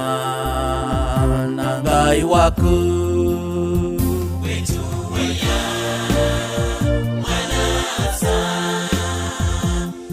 na Ngai waku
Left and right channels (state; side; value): identical; both; correlation 1.00